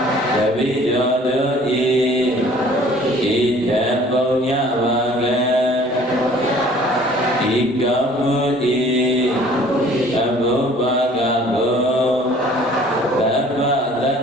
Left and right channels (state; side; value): normal; both; correlation 0.52